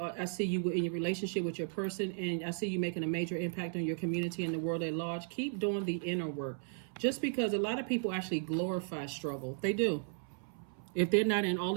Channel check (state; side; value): silent; left; 54 dB below the other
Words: see you in your relationship with your person, and I see you making a major impact on your community and the world at large. Keep doing the inner work. Just because a lot of people actually glorify struggle. They do. If they're not in all